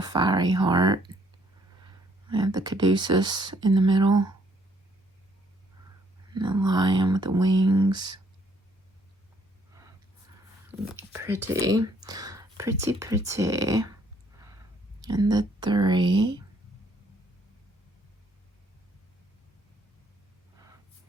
fiery heart. We have the caduceus in the middle. And the lion with the wings. Pretty. Pretty, pretty. And the 3.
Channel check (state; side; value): normal; both; correlation 0.66